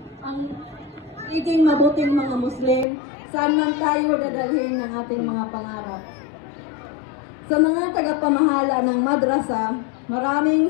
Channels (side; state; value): right; drops out; at 2.9 s